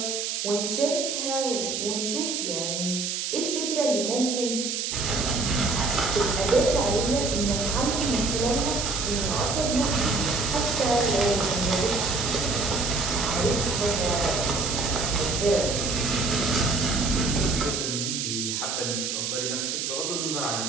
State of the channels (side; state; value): right; noise; hiss, 2 dB below the sound